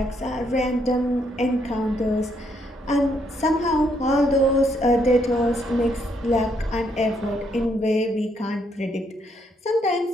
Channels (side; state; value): both; normal; correlation 0.73